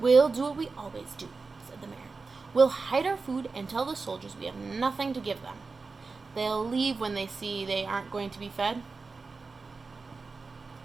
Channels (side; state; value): left; quieter; 4.2 dB